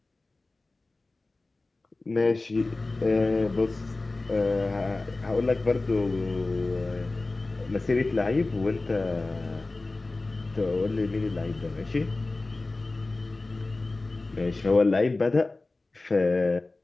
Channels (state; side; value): quieter; right; 3.2 dB